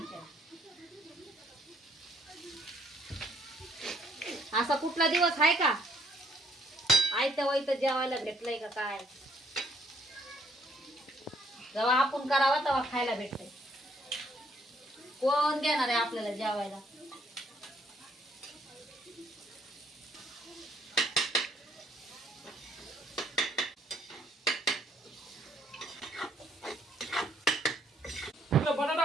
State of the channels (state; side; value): normal; both; correlation 0.67